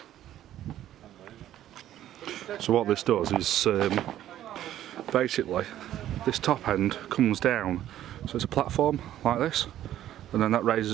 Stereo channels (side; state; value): left; quieter; 12.4 dB